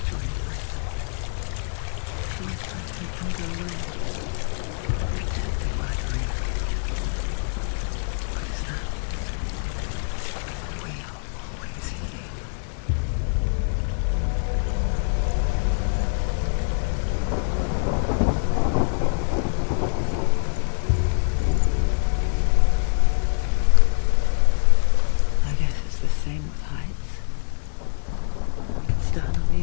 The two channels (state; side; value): silent; right; digital silence